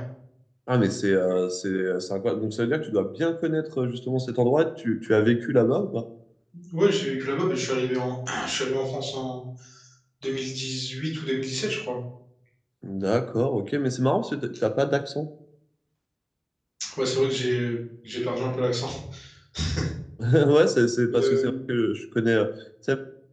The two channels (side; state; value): both; identical; correlation 1.00